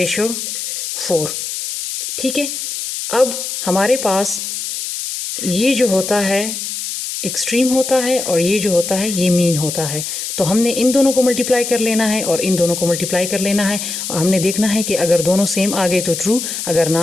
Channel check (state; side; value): noise; left; hiss, 5 dB below the sound